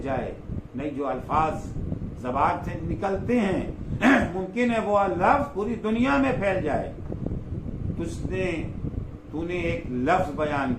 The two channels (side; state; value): both; identical; correlation 1.00